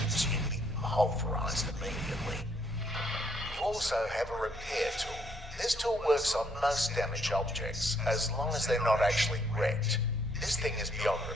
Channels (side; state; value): both; normal; correlation 0.70